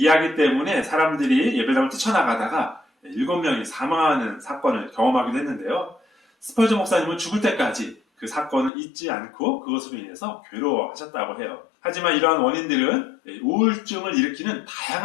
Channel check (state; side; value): drops out; right; at 8.7 s